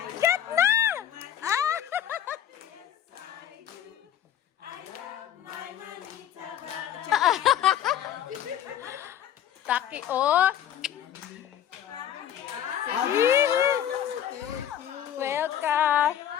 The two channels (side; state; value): right; quieter; 10.5 dB